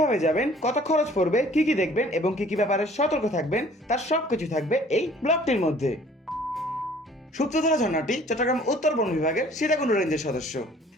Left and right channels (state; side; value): normal; both; correlation 0.54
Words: যাবেন, কত খরচ পড়বে, কি কি দেখবেন এবং কি কি ব্যাপারে সতর্ক থাকবেন, তার সবকিছু থাকবে এই ব্লগটির মধ্যে। সূত্রধারা ঝর্ণাটি চট্টগ্রাম উত্তর বন বিভাগের সীতাকুণ্ড রেঞ্জের সদস্য।